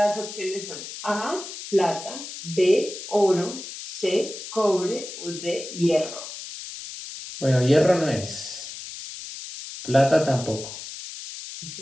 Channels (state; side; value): noise; left; hiss, 11 dB below the sound